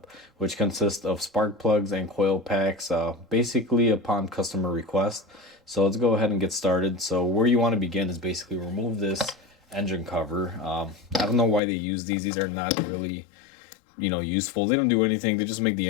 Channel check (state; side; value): drops out; right; at 11.6 s